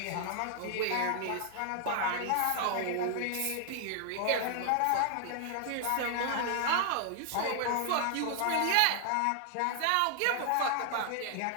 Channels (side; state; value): both; different; correlation 0.00